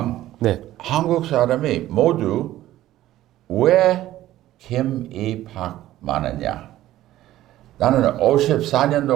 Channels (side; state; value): left; quieter; 14.4 dB